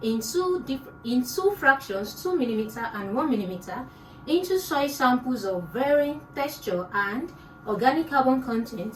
in two fractions, 2 mm and 1 mm, into soil samples of varying texture and organic carbon content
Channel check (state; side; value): identical; both; correlation 1.00